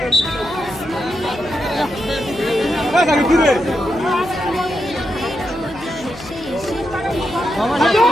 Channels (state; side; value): noise; left; hum, 20 dB below the sound